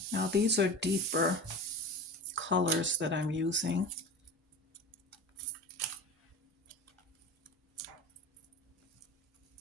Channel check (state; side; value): normal; both; correlation 0.32